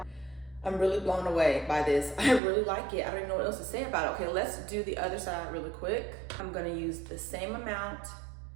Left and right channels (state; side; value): drops out; left; at 2.4 s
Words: I'm really blown away by this. I really like it. I don't even know what else to say about it. Okay, let's do the other side really quick. I'm gonna use the same amount